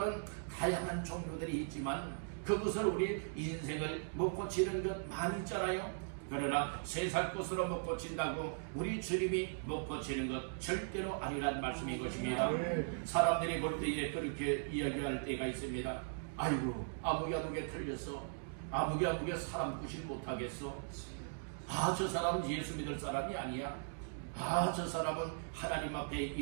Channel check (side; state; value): left; silent; digital silence